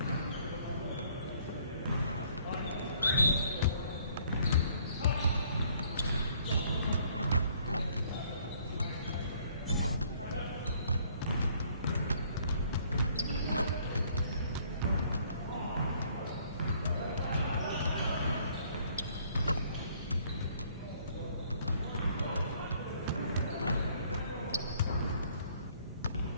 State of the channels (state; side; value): inverted; both; correlation -0.62